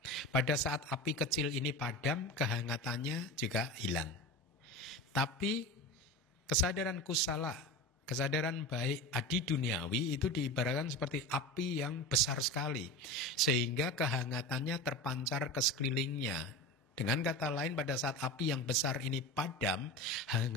Pada saat api kecil ini padam, kehangatannya juga hilang. Tapi kesadaran kusala, kesadaran baik adi duniawi itu diibaratkan seperti api yang besar sekali, sehingga kehangatannya terpancar ke sekelilingnya. Dengan kata lain, pada saat api yang besar ini padam,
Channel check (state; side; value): normal; both; correlation 0.28